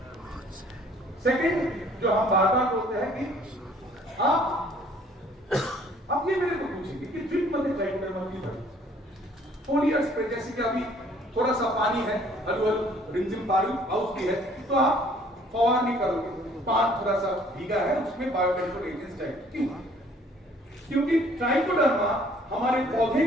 सेकंड जो हम बार बार बोलते हैं कि आप ये मेरे को पूछेंगे कि ड्रिप मध्ये ट्राइकोडर्मा की तरह फोलियर स्प्रे, जैसे कि अभी थोड़ा सा पानी है, रिमझिम बारिश भी है, तो आप फवार नहीं करोगे, पानी थोड़ा सा भीगा है उसमें बायोकंट्रोल एजेंट्स चाहिए। क्यों? क्योंकि ट्राइकोडर्मा हमारे पौधे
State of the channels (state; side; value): normal; both; correlation 0.58